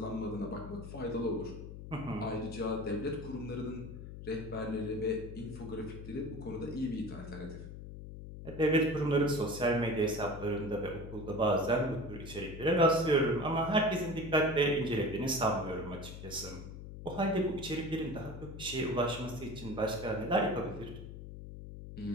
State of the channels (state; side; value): noise; left; hum, 11 dB below the sound